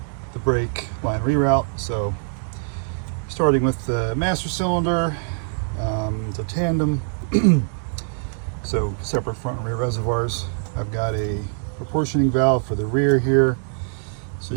brake line reroute. So starting with the master cylinder, it's a tandem, so separate front and rear reservoirs. I've got a proportioning valve for the rear here, so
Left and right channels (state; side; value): silent; left; 63 dB below the other